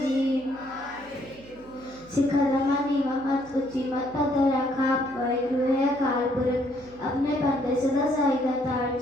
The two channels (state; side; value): noise; right; hum, 24 dB below the sound